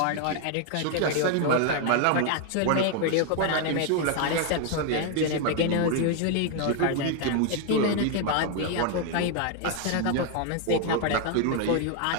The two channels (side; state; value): both; different; correlation 0.00